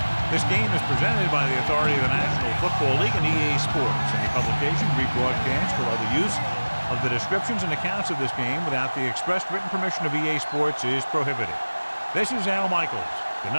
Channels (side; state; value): both; inverted; correlation -1.00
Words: This game is presented by the authority of the National Football League and EA Sports. Any publication, rebroadcast, or other use of the descriptions and accounts of this game without the express written permission of EA Sports is prohibited. This is Al Michaels. Good